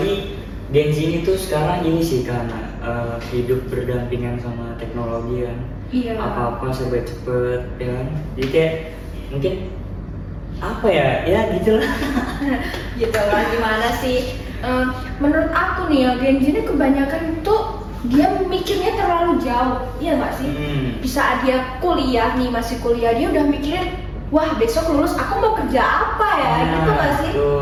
Gen Z ini tuh sekarang ini sih karena hidup berdampingan sama teknologi kan. Iya. Apa-apa serba cepet ya kan. Jadi kayak mungkin apa ya gitulah. Gitu lah, gimana sih? Menurut aku nih ya, Gen Z ini kebanyakan tuh dia mikirnya terlalu jauh, iya nggak sih? Bisa dia kuliah nih, masih kuliah, dia udah mikirin, wah besok lulus aku mau kerja apa ya, gitu nggak sih?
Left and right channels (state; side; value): identical; both; correlation 1.00